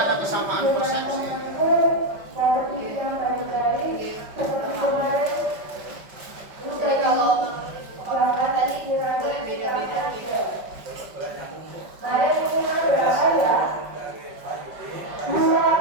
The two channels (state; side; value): late; left; 5.4 ms